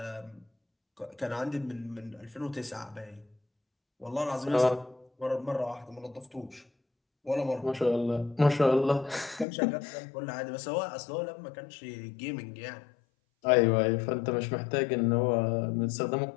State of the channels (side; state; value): right; drops out; at 9.5 s